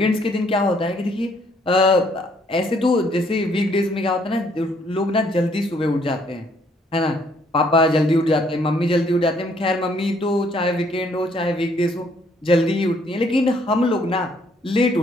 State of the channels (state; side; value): normal; both; correlation 0.66